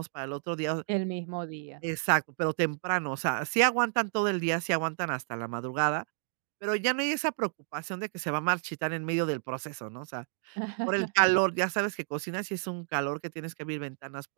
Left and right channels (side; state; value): left; silent; digital silence